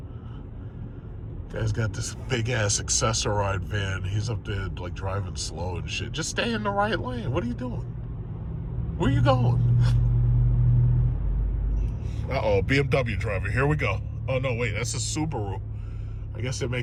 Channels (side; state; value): both; identical; correlation 1.00